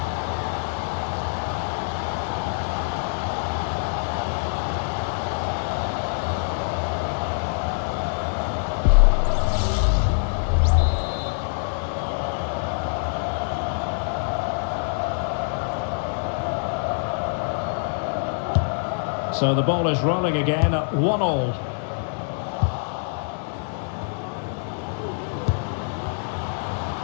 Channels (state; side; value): silent; right; 62 dB below the other